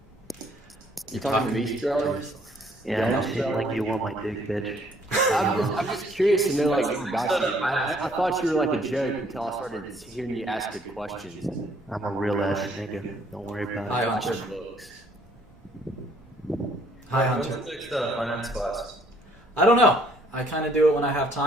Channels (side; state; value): both; normal; correlation 0.63